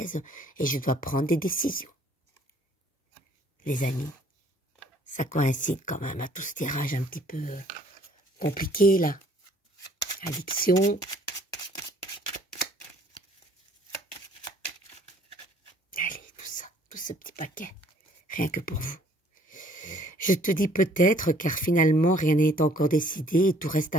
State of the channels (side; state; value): both; normal; correlation 0.58